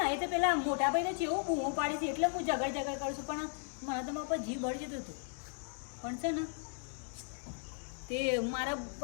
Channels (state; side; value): silent; right; 54 dB below the other